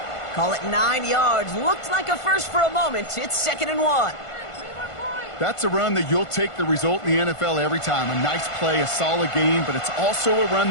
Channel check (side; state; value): right; late; 1.5 ms